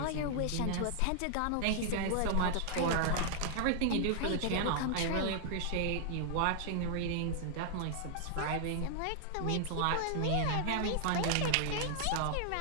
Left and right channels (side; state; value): both; different; correlation 0.00